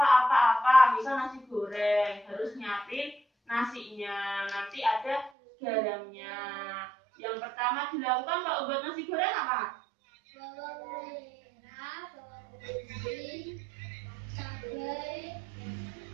misal nasi goreng, harus nyiapin nasinya, nanti ada garamnya, Yang pertama dilakukan kalau buat nasi goreng apa? Bawang merah, bawang putih, cabai,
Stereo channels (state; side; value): drops out; left; at 5.3 s